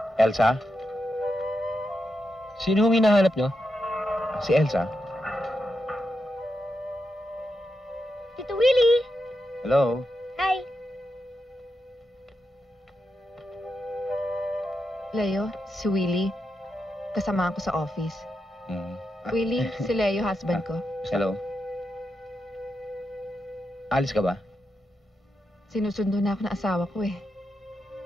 Elsa? Sino hong hinahanap nyo? Si Elsa? Tito Willie! Hello? Hi! Leo, si Willie. Kasama ko sa office. Mm. Willie, si Leo, husband ko. Hello? Alis ka ba? Sinusundo na ako ng asawa ko eh.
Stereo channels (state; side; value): normal; both; correlation 0.86